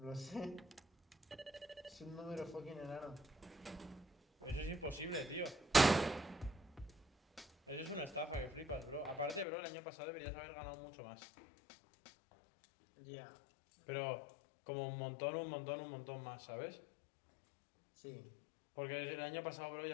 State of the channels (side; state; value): right; drops out; at 9.5 s